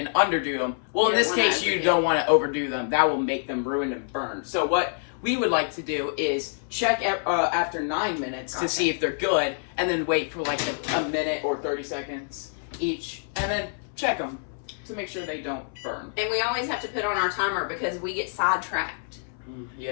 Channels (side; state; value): right; silent; 61 dB below the other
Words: underdo them. Well, in You this don't wanna case, you underdo. don't want to overdo them. That will make them ruined and burned. So what we would like to do is check after 9 minutes to see if they're good, and then wait for like a minute or 30 seconds each, and then check them to make sure they don't burn. And we always have to put on our timer because we get sidetracked